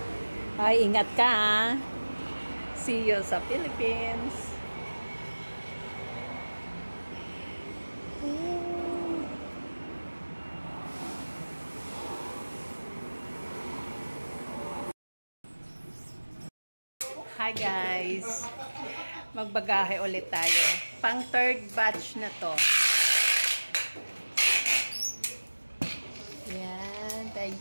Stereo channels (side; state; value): both; inverted; correlation -1.00